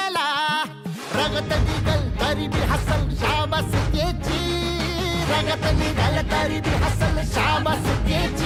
रगत निघल तरी बी हसल शाबास त्याची, रगत निघल तरी बी हसल शाबास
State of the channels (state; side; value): identical; both; correlation 1.00